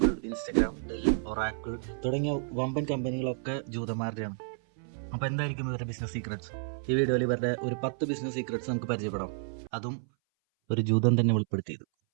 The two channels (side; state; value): left; silent; 57 dB below the other